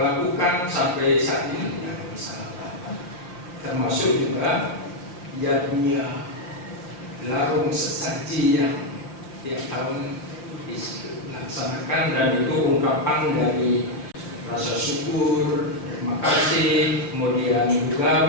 lakukan sampai saat ini tidak ada masalah. Termasuk juga jadinya larung sesaji yang tiap tahun dilaksanakan, dan itu ungkapan dari rasa syukur, terima kasih, kemudian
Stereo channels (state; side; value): late; right; 5.8 ms